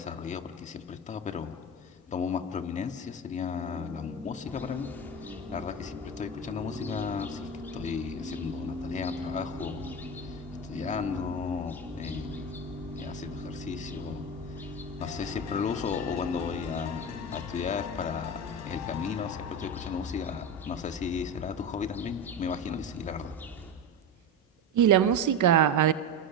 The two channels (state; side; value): normal; both; correlation 0.21